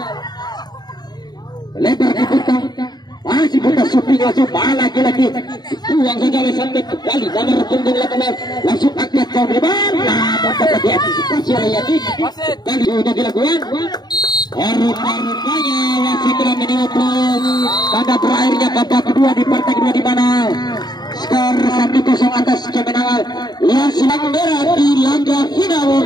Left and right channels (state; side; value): late; right; 0.20 ms